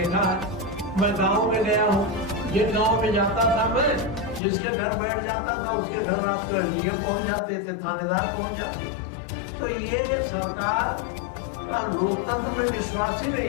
है। मैं गांव में गया हूँ, जिन गांव में जाता था मैं, जिसके घर बैठ जाता था उसके घर रात को एलडीएम पहुंच जाते थे, थानेदार पहुंच जाते। तो ये सरकार का लोकतंत्र में विश्वास ही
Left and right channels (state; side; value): drops out; right; at 4.4 s